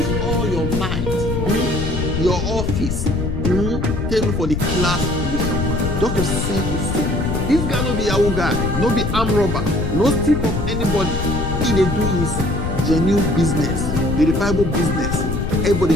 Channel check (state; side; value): noise; left; rumble, 2 dB below the sound